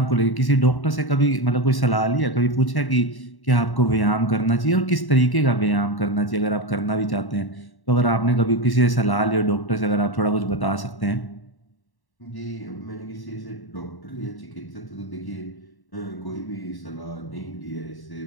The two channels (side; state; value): right; late; 1.1 ms